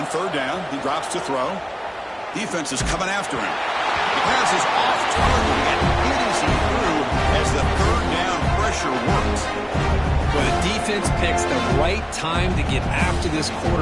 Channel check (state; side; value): identical; both; correlation 1.00